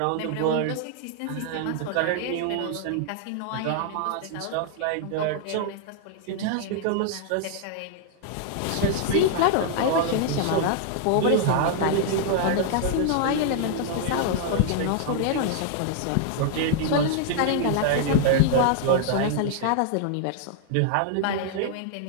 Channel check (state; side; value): different; both; correlation -0.01